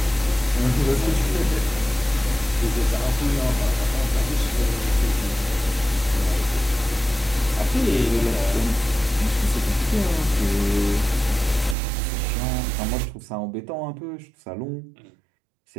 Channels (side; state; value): left; drops out; at 11.8 s